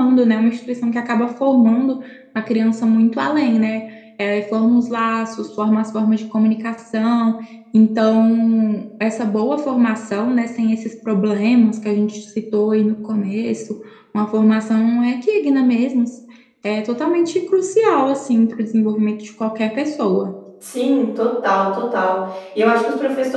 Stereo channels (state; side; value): identical; both; correlation 1.00